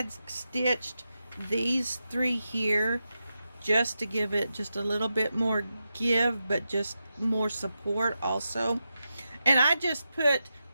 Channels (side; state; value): both; inverted; correlation -0.89